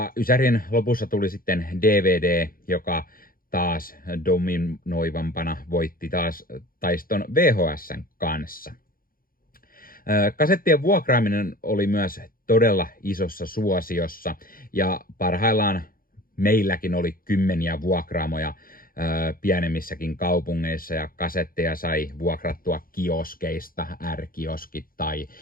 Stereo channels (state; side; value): late; right; 0.42 ms